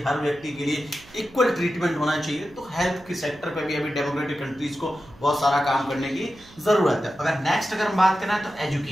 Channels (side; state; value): right; noise; hum, 23 dB below the sound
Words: हर व्यक्ति के लिए इक्वल ट्रीटमेंट होना चाहिए। तो हेल्थ के सेक्टर पे भी अभी डेमोक्रेटिक कंट्रीज को बहुत सारा काम करने की जरूरत है। अगर हम बात करें तो